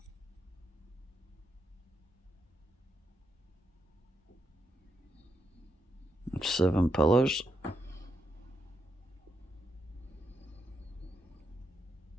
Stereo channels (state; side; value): normal; both; correlation 0.81